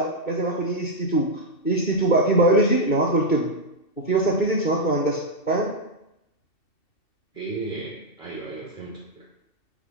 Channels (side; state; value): right; late; 2.7 ms